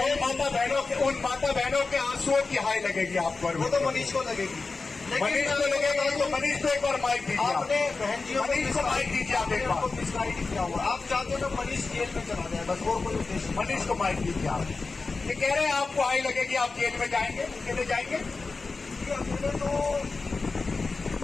उन माता बहनों के आंसुओं की हाय लगेगी आप पर। वो तो मनीष को लगेगी, मनीष को लगेगा तो मनीष को एक बार माइक दीजिए। आपने बहन जी मनीष को माइक दीजिए आप एक बार। मिसगाइड किया हुआ, आप चाहते हो मनीष जेल में चला जाए, बस और कोई उद्देश्य। मनीष को माइक दीजिए आप। ये कह रहे हैं आपको हाई लगेगी, आप जेल में जाएंगे, कैसे जाएंगे? अकेले तो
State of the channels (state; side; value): quieter; right; 4.0 dB